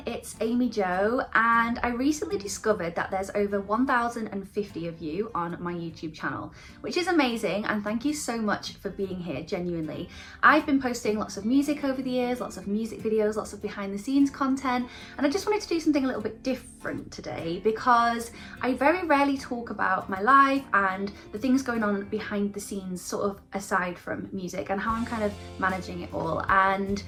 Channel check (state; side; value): identical; both; correlation 1.00